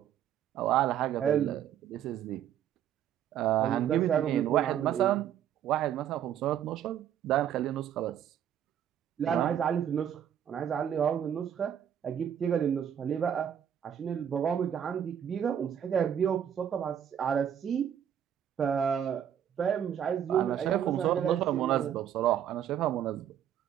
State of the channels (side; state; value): left; quieter; 9.6 dB